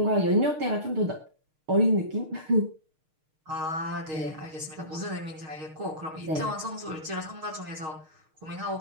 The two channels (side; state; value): left; late; 6.5 ms